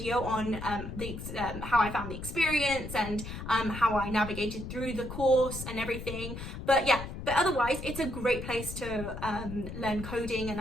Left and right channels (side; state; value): left; noise; rumble, 8 dB below the sound